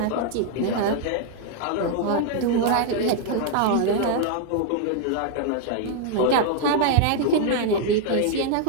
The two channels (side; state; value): both; different; correlation 0.00